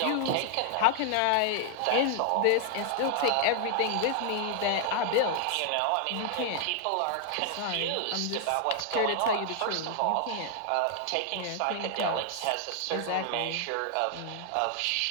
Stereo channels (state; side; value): different; both; correlation 0.00